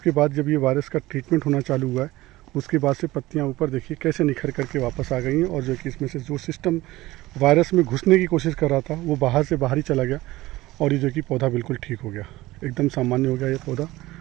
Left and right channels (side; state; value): left; quieter; 18.1 dB